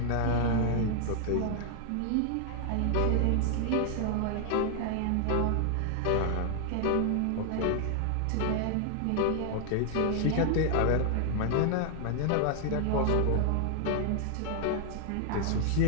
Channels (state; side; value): different; both; correlation 0.00